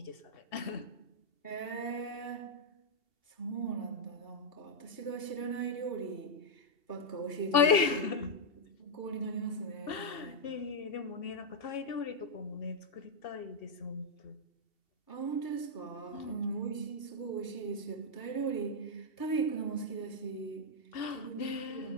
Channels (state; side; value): late; right; 2.7 ms